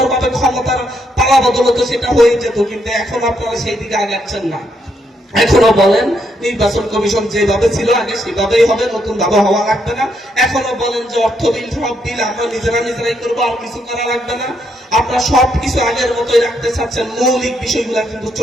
ক্ষমতার পালা বদল হতো, সেটা হয়ে যেত। কিন্তু এখন আপনারা সেই দিকে আগাচ্ছেন না। এখনো বলেন নির্বাচন কমিশন যেভাবে ছিল আগে সেভাবেই হবে, নতুন ভাবে হওয়া লাগবে না। এখনো বলেন যে অর্থ বিল, সব বিল আমরা নিজেরাই করবো, আর কিছু করা লাগবে না। আপনারা সবকিছু আগের মতোই রাখতে চাচ্ছেন। মৌলিক বিষয়গুলা কিন্তু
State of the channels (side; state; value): both; normal; correlation 0.76